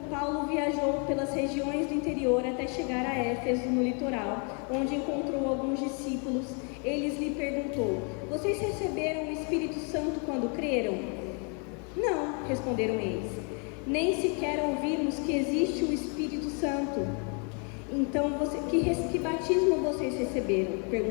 Paulo viajou pelas regiões do interior até chegar a Éfeso, no litoral, onde encontrou alguns discípulos. Eles lhe perguntou, vocês receberam o Espírito Santo quando creram? Não, responderam eles. Nem sequer ouvimos que existe o Espírito Santo. Então, que batismo vocês receberam?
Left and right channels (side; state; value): right; quieter; 37.7 dB